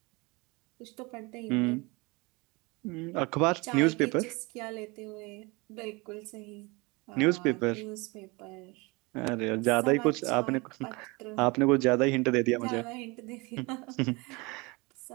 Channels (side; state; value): left; quieter; 25.9 dB